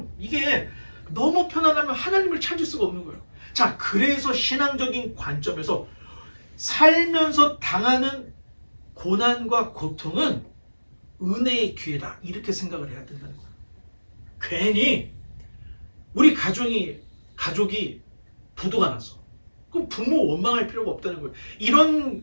이게 너무 편안하면 하나님을 찾을 수가 없는 거예요. 자, 그래서 신앙적인 관점에서 살면서 당하는 고난과 고통은 은혜의 기회다 이렇게 생각을 해야 된다는 거예요. 괜히 우리 가족이 부도가 났어. 그럼 부모 원망할 필요가 없다는 거예요.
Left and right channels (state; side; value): inverted; both; correlation -1.00